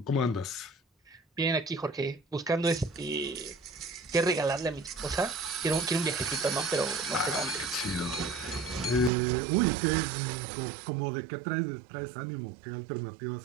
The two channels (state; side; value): drops out; left; at 9.1 s